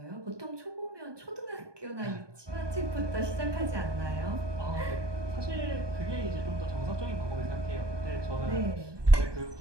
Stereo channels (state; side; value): late; left; 1.2 ms